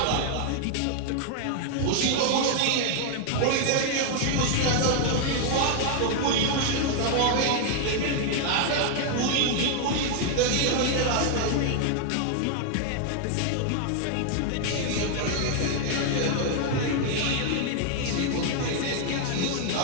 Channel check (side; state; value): both; different; correlation 0.00